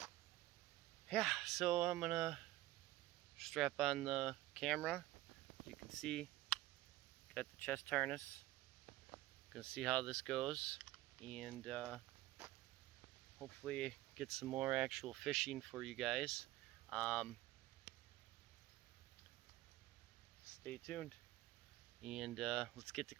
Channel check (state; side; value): quieter; left; 16.8 dB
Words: yeah, so I'm gonna strap on the camera. As you can see, got the chest harness. Gonna see how this goes, and hopefully get some more actual fishing for you guys. Stay tuned, and let's get to